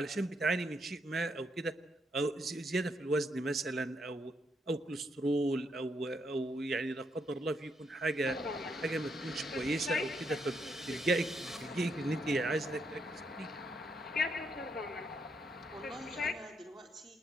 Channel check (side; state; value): both; normal; correlation 0.77